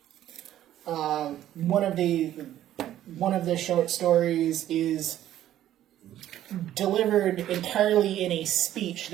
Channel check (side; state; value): left; quieter; 12.4 dB